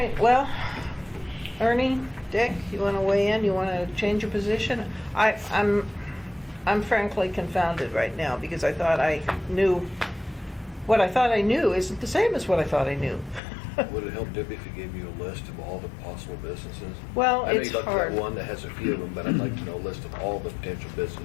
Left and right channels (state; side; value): drops out; right; at 13.4 s